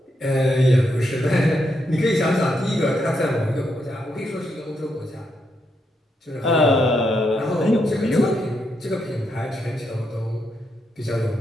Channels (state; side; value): normal; both; correlation 0.80